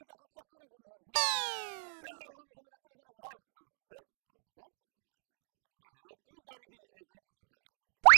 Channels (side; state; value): left; silent; digital silence